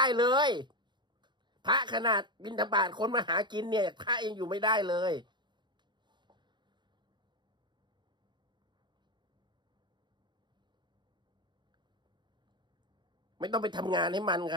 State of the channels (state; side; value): late; left; 0.22 ms